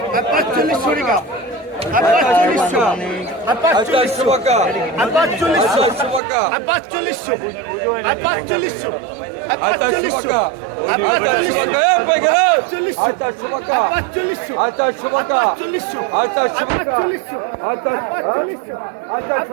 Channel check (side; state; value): left; drops out; at 6.2 s